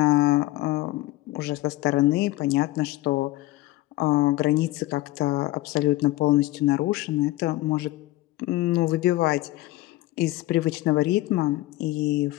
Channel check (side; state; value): right; quieter; 17.6 dB